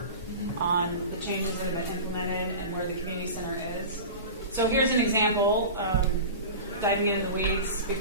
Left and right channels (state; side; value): inverted; both; correlation -0.31